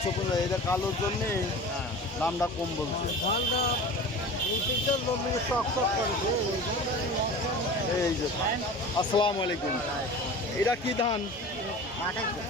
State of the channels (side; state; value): both; normal; correlation 0.37